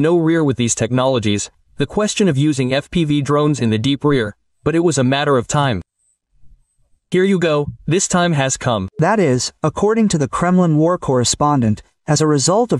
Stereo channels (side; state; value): both; identical; correlation 1.00